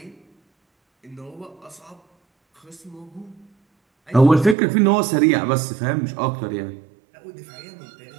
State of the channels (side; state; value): left; drops out; at 4.5 s